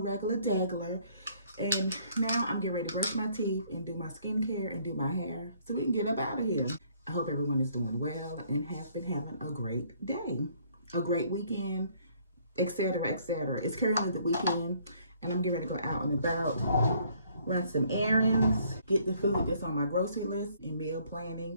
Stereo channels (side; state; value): both; inverted; correlation -0.63